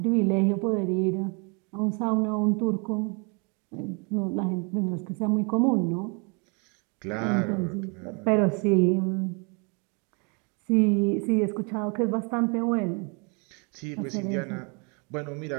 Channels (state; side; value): quieter; left; 33.8 dB